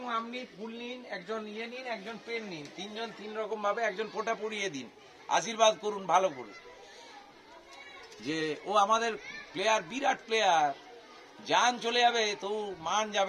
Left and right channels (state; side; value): identical; both; correlation 1.00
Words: আপনি ফুল নিন, একজন নিন, একজন পেন নিন, তিনজন তিন রকম ভাবে একজন ফোঁটা পরিয়ে দিন, আশীর্বাদ করুন ভালো করে যে ও আমাদের প্লেয়ার, বিরাট প্লেয়ার। জান চলে যাবে তো মান